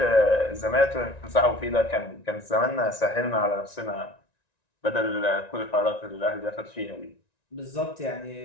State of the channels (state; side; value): late; right; 1.9 ms